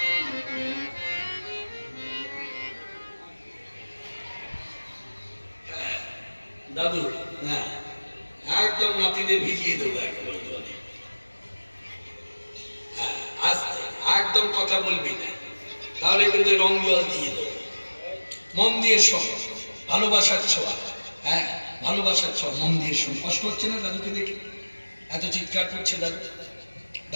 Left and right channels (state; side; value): inverted; both; correlation -1.00